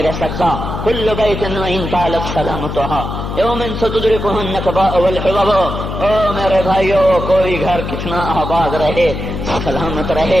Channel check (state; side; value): noise; left; hum, 5 dB below the sound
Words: رہ سکتا۔ کل بیت وإن طالت سلامتها یوم ستدرکہ النکباء والحباب۔ او میرے بھائیو، کوئی گھر کتنا آباد رہے، سلامت